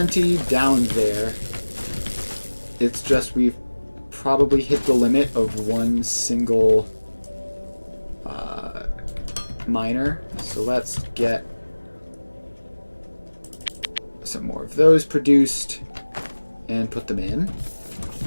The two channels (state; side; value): inverted; both; correlation -1.00